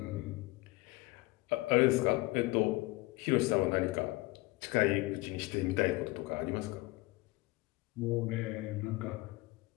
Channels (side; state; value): right; quieter; 21.7 dB